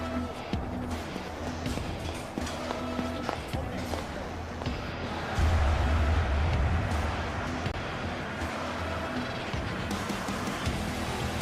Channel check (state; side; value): identical; both; correlation 1.00